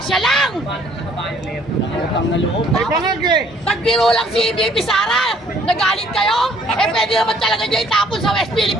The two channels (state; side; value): normal; both; correlation 0.61